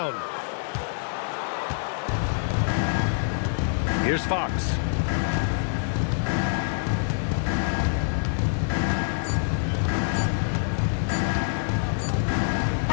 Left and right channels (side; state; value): right; silent; digital silence